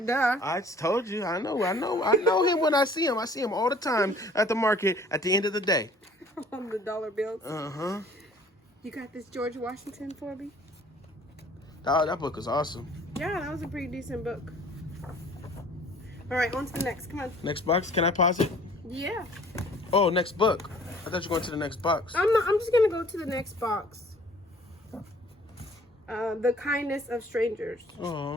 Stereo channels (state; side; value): normal; both; correlation 0.53